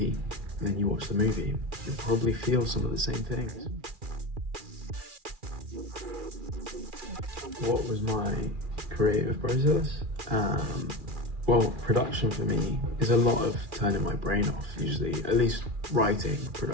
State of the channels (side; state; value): left; late; 2.4 ms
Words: then you watch the movie, you'll probably feel some of the same things. What was my creative process? Well, production for me is a lot of turning my brain off, usually, at least writing,